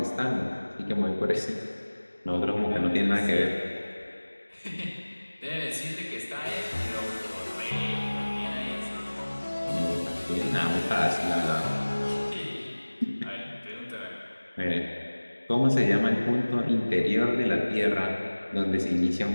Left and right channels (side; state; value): both; inverted; correlation -1.00